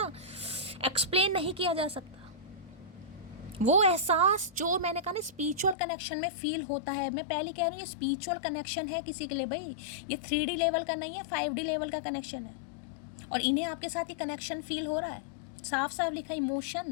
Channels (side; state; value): right; drops out; at 5.8 s